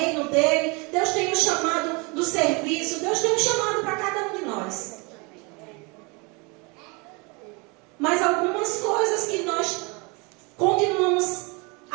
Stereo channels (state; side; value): quieter; left; 29.4 dB